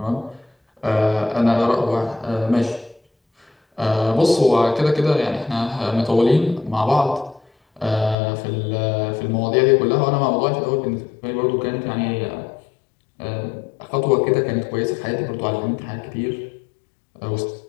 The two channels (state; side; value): drops out; right; at 8.2 s